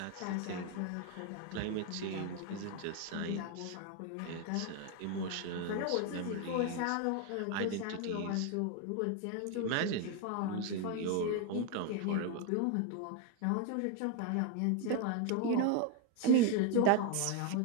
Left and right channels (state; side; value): different; both; correlation 0.01